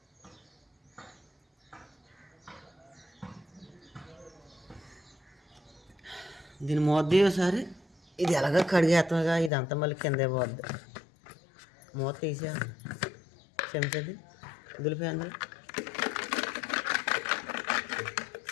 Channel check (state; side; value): drops out; right; at 9.5 s